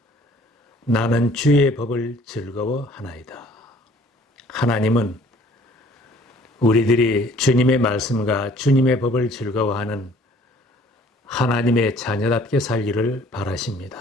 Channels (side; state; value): both; normal; correlation 0.55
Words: 나는 주의 법을 즐거워하나이다. 하나님은 우리들이 주님의 말씀과 주님의 법을 즐거워하는 하나님의 자녀답게 살기를